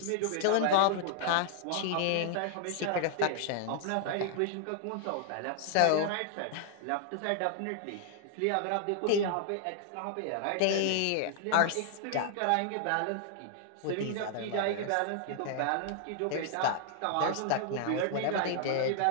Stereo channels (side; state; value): both; different; correlation -0.01